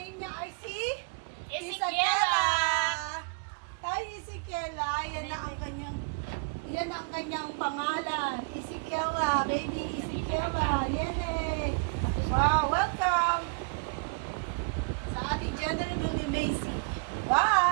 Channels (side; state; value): left; quieter; 38.4 dB